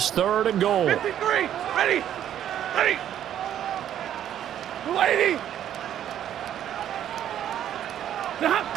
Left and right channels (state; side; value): quieter; left; 10.6 dB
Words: 3rd and goal. 53, ready, 280.